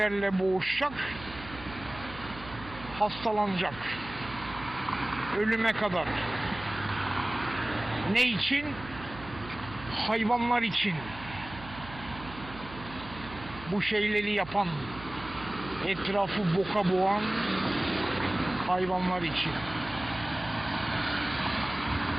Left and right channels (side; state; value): right; noise; hum, 15 dB below the sound